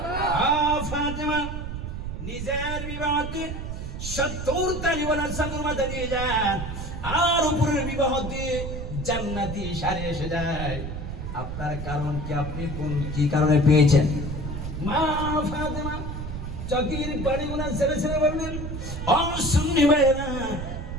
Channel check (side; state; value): right; noise; rumble, 6 dB below the sound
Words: ফাতেমা নিজের বিবাহতে 70 তালিওয়ালা চাদর মাথা দিয়ে যান, আর উপরের বিবাহ দিয়ে জান্নাতি শাড়ি এসে যায়। আপনার কারণ কি? আপনি কোন কি কারণে পেয়েছেন? মা ফাতেমা চকির পানিগুলা ছেড়ে ছেড়ে বললেন, ও সুন্নি ভাইরা,